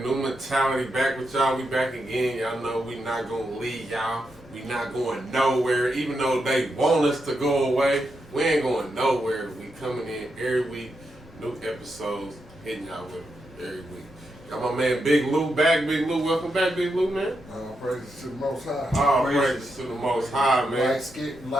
New mentality back with y'all. We back again. Y'all know we not gonna leave y'all. We not going nowhere. Even though they want us to go away, we ain't going nowhere. We coming in every week, new episodes, hitting y'all with them every week. Got my man Big Lou back. Big Lou, welcome back, Big Lou, man. All praises to the Most High. All praises to the Most High, man.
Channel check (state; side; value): normal; both; correlation 0.84